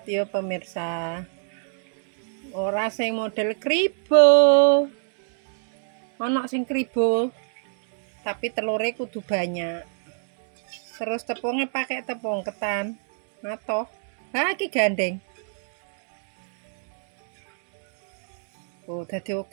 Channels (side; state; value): left; silent; digital silence